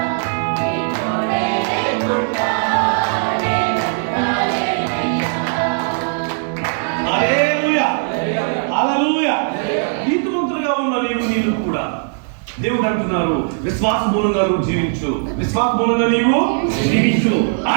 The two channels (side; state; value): left; silent; 67 dB below the other